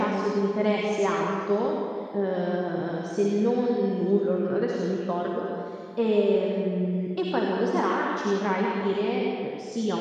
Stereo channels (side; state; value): both; identical; correlation 1.00